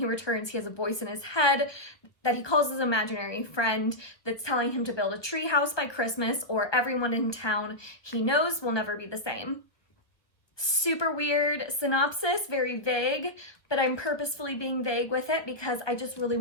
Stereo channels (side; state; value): right; late; 1.1 ms